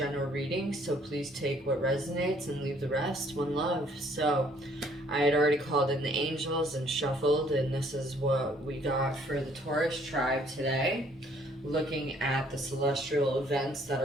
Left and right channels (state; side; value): normal; both; correlation 0.62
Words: readings, so please take what resonates and leave the rest. One love. So, I had already called in the angels and shuffled, and this is what we got for the Taurus tribe today. Looking at the celestial events that